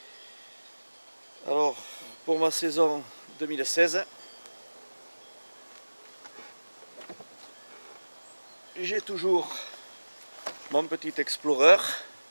Alors, pour ma saison 2016, j'ai toujours mon petit Explorer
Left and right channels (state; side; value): inverted; both; correlation -1.00